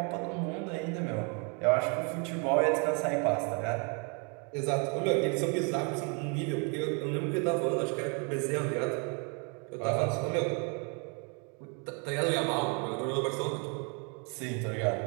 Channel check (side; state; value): left; quieter; 34.1 dB